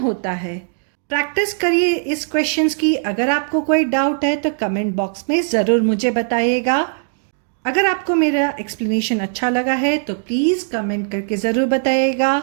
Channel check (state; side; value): silent; left; digital silence